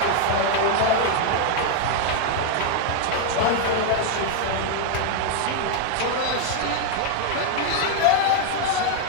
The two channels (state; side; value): different; both; correlation 0.00